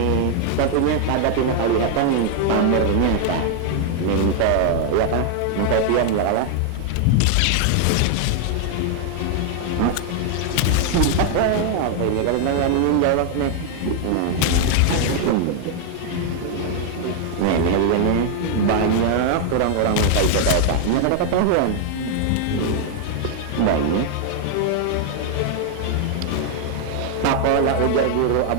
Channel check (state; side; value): different; both; correlation 0.00